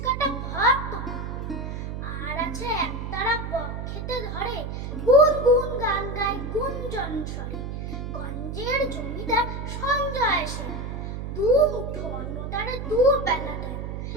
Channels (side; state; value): right; noise; hum, 5 dB below the sound